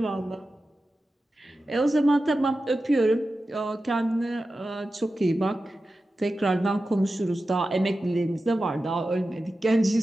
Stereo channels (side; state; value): both; normal; correlation 0.93